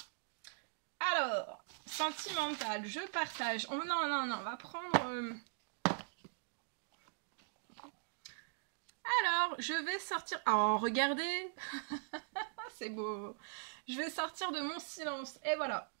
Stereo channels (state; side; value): silent; left; digital silence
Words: Alors, sentimental, je partage. Oh, non, non, non, on va prendre... Alors, je vais sortir... Oh, regardez. C'est beau. Je vais sortir de mon silence. Et voilà.